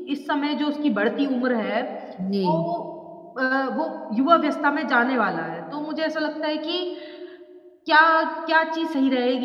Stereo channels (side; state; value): both; identical; correlation 1.00